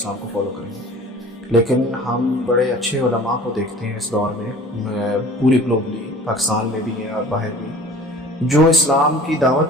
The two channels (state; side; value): normal; both; correlation 0.45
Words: کو فالو کریں گے۔ لیکن ہم بڑے اچھے علماء کو دیکھتے ہیں اس دور میں، پوری گلوبلی، پاکستان میں بھی ہیں اور باہر بھی، جو اسلام کی